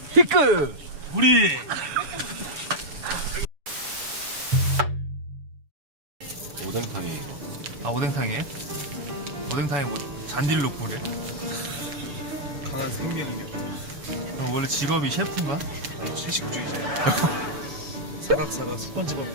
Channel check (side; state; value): left; late; 7.0 ms